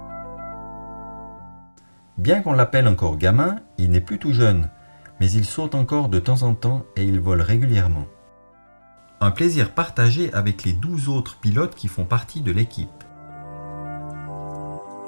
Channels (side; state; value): both; inverted; correlation -1.00